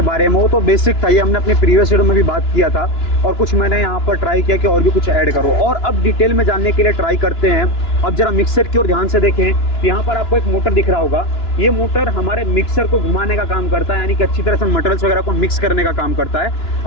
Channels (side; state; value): right; late; 2.9 ms